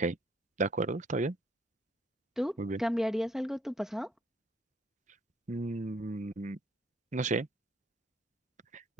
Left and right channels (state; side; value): normal; both; correlation 0.63